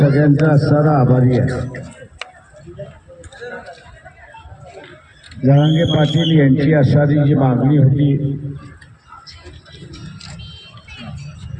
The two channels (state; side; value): identical; both; correlation 1.00